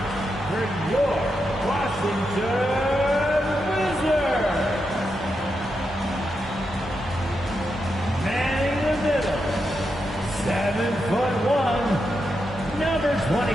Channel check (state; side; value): normal; both; correlation 0.85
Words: for your Washington Wizards. Manning the middle, 7'1", number